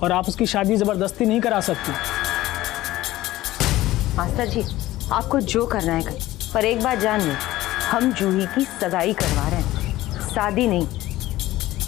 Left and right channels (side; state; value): right; quieter; 16.3 dB